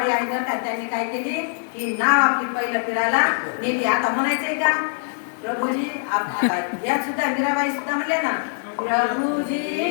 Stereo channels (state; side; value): silent; right; digital silence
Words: आणि गटात त्यांनी काय केली की नाव आपली पहिलं फिरायला नेली आता म्हणायचंय का प्रभूजी या सुद्धा मीराबाई सुद्धा म्हणल्या ना प्रभूजी